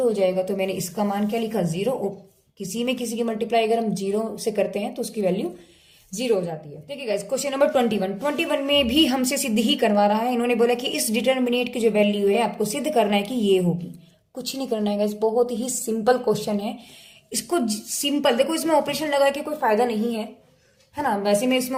जाएगा। तो मैंने इसका मान क्या लिखा 0, और किसी में किसी की मल्टीप्लाई अगर हम 0 से करते हैं तो उसकी वैल्यू 0 हो जाती है। देखिए गाइस क्वेश्चन नंबर 21 में भी हमसे सिद्ध ही करवा रहा है। इन्होंने बोला कि इस डिटरमिनेंट की जो वैल्यू है आपको सिद्ध करना है कि ये होगी, कुछ नहीं करना है गाइस, बहुत ही सिंपल क्वेश्चन है। इसको सिंपल देखो, इसमें ऑपरेशन लगा के कोई फायदा नहीं है ना। वैसे मैं इसमें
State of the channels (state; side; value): identical; both; correlation 1.00